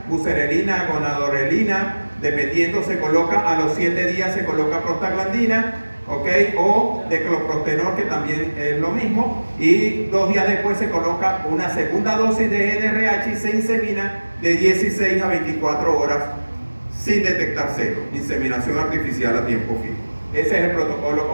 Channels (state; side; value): inverted; both; correlation -1.00